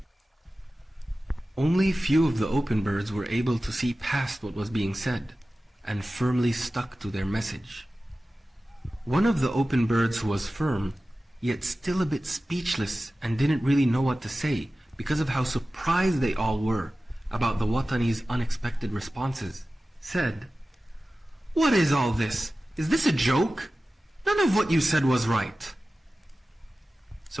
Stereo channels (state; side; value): normal; both; correlation 0.96